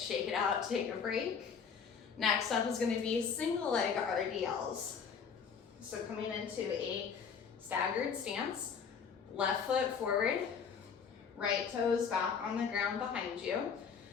it out, take a break. Next up is going to be single leg RDLs. So coming into a staggered stance, left foot forward, right toes back on the ground behind you.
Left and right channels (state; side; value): quieter; right; 6.5 dB